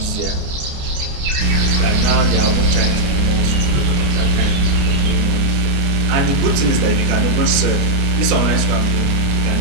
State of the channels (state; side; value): late; left; 29 ms